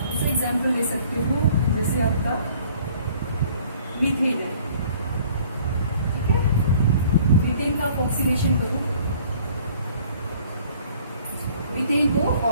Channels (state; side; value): inverted; both; correlation -0.55